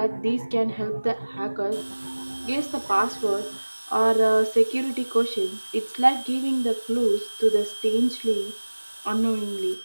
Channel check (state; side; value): inverted; both; correlation -1.00